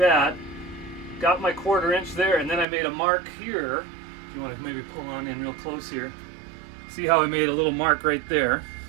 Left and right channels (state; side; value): drops out; left; at 2.7 s